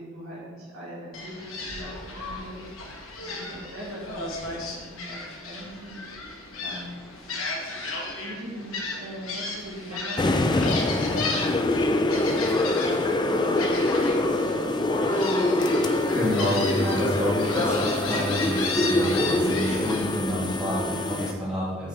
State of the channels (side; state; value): both; normal; correlation 0.57